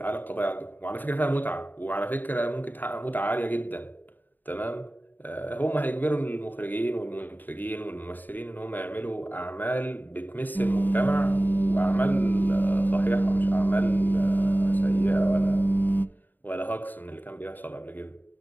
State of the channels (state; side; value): late; right; 0.089 ms